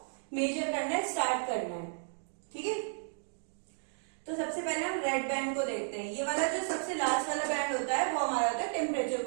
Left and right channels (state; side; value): silent; left; digital silence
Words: मेजर करना है, स्टार्ट करना है, ठीक है। तो सबसे पहले हम रेड बैंड को देखते हैं। ये वाला जो सबसे लास्ट वाला बैंड होता है वो हमारा होता है टेम्परेचर